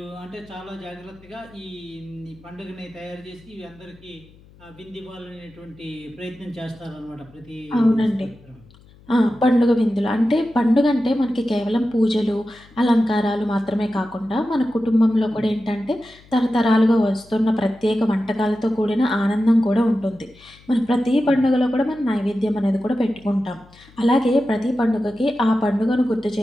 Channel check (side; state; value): left; noise; hum, 26 dB below the sound